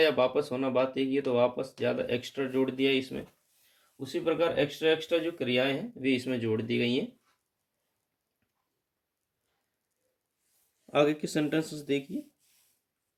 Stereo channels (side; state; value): both; identical; correlation 1.00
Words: वापस होना बात एक ही है, तो वापस ज़्यादा एक्स्ट्रा जोड़ दिया इसमें। उसी प्रकार एक्स्ट्रा एक्स्ट्रा जो क्रियाएं हैं वे इसमें जोड़ दी गई हैं। आगे के सेंटेंसेस देखिए।